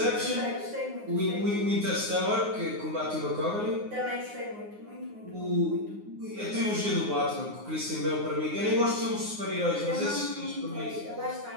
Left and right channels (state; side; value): late; left; 9.6 ms